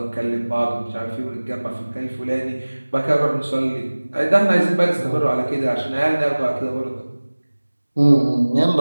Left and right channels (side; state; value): both; inverted; correlation -1.00